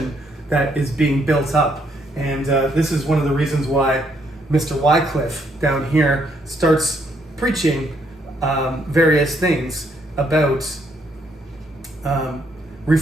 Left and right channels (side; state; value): both; normal; correlation 0.72